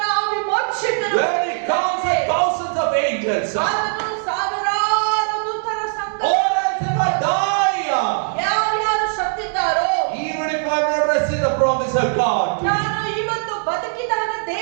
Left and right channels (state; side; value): silent; left; digital silence